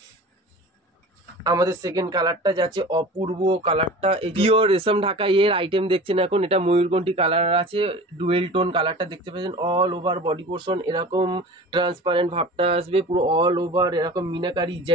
আমাদের সেকেন্ড কালারটা যাচ্ছে অপূর্ব কালারটা, এই পিওর রেশম ঢাকাই এর আইটেম দেখছেন এখন। এটা ময়ূরকণ্ঠী কালার আছে, ডুয়েল টোন কালারটা দেখতে পাচ্ছেন। অল ওভার বডি পোর্শন এরকম ট্রান্সপারেন্ট ভাবটা আসবে, পুরো অল ওভার এরকম মিনাকারি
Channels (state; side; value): normal; both; correlation 0.38